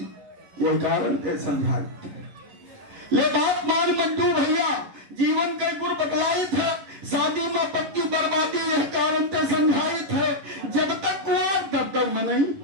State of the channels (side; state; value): left; late; 11 ms